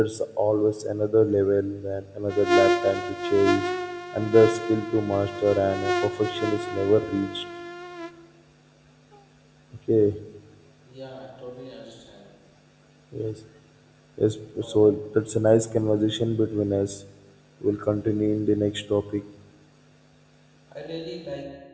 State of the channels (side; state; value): both; identical; correlation 1.00